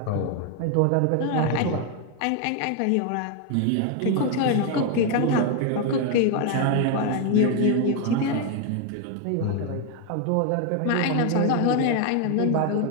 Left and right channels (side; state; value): both; different; correlation 0.01